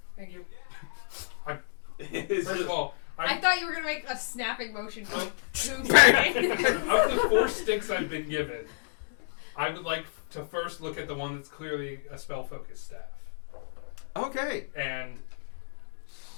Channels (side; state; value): right; silent; digital silence